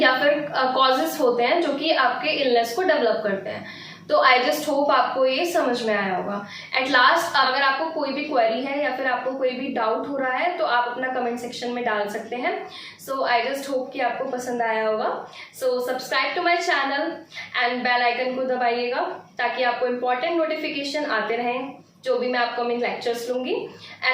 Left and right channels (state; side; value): identical; both; correlation 1.00